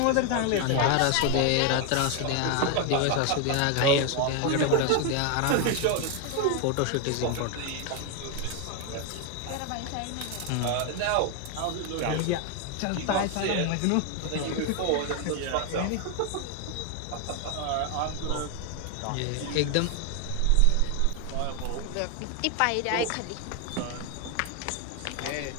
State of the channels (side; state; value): both; different; correlation 0.01